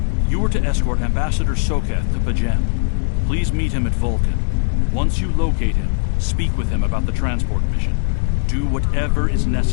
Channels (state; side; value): silent; right; 62 dB below the other